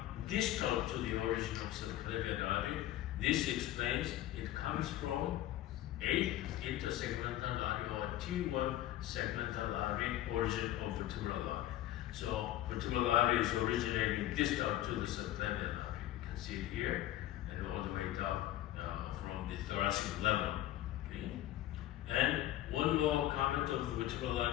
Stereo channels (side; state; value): right; quieter; 14.1 dB